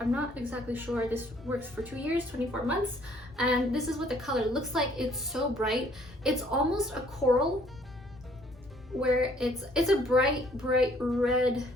not exactly sure. This works for 2 years, 24 months. And this is what the color looks like. It's so bright. It's almost a coral, where it's a bright red,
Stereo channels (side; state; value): both; normal; correlation 0.61